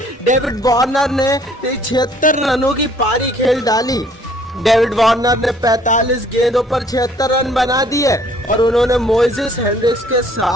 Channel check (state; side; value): normal; both; correlation 0.59